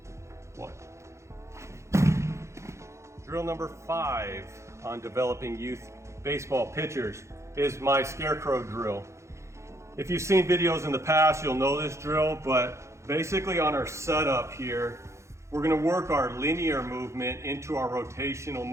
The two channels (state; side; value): late; left; 0.14 ms